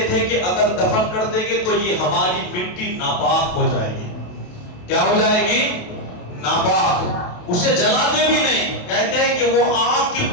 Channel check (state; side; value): late; right; 28 ms